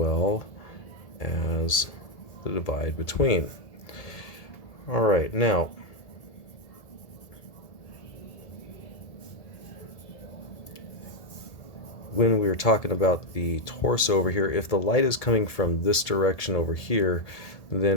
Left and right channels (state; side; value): late; right; 1.7 ms